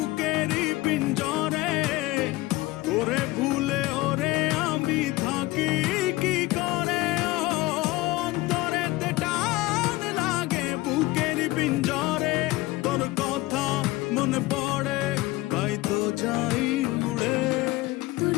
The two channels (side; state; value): right; quieter; 19.7 dB